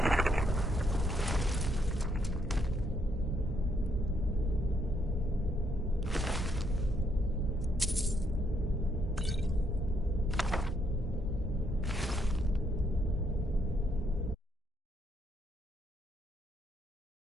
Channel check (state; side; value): normal; both; correlation 0.74